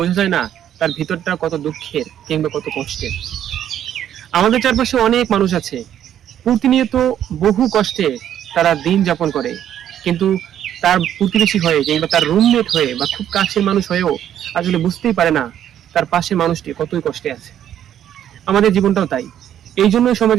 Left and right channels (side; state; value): left; quieter; 10.5 dB